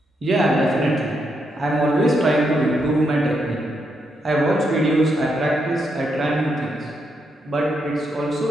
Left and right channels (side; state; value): both; normal; correlation 0.80